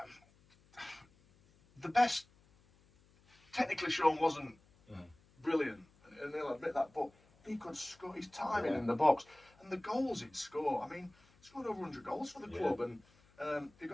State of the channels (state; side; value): noise; left; hum, 30 dB below the sound